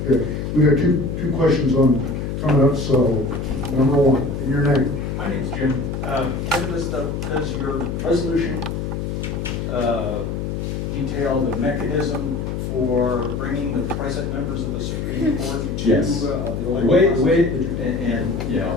Okay. We got two questions on coming up. So number one, in your name. My name's Jim. Kevin, does your resolution detail the mechanism for bringing the present members of the Supreme Court to Yes. the The elected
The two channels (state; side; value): noise; left; hum, 3 dB below the sound